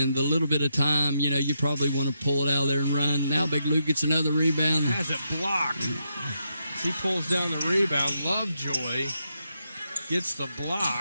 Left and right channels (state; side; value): inverted; both; correlation -0.82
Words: the little bit of time, you probably want to pull it out of there and run. Now Big Luke gets another rebound. Has it blocked. He pulls down the rebound. Lovejoy gets the